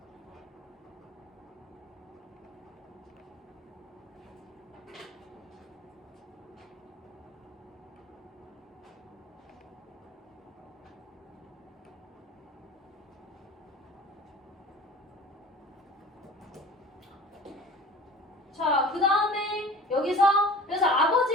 자, 그 다음에 여기서 그래서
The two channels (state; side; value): normal; both; correlation 0.42